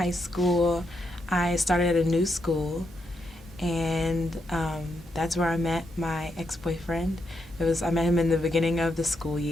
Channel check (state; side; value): normal; both; correlation 0.81